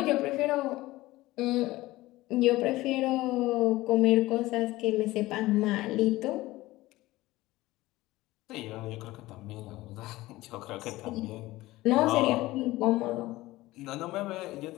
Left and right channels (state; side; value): quieter; right; 18.2 dB